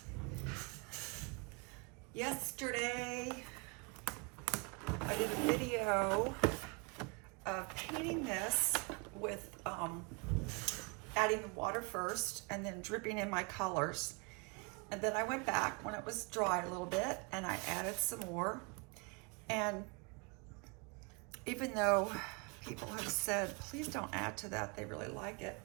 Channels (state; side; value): quieter; left; 31.7 dB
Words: Yesterday I did a video of painting this with adding the water first and then dripping in my colors. And then I went back when it was dry a little bit and I added some more. And even though people have said, please don't add to that, they really like it,